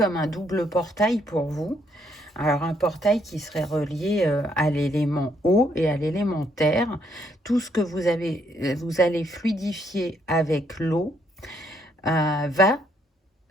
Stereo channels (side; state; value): both; normal; correlation 0.71